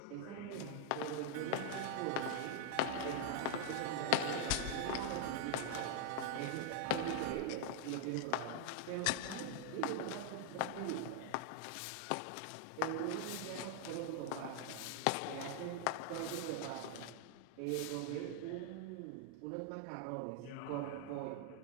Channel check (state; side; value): different; both; correlation 0.00